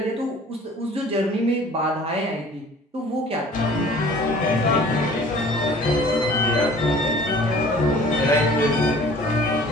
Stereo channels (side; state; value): both; normal; correlation 0.49